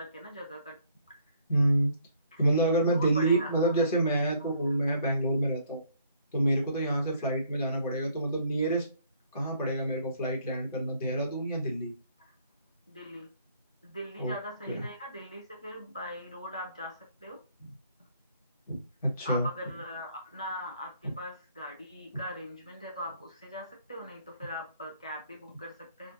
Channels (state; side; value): inverted; both; correlation -0.64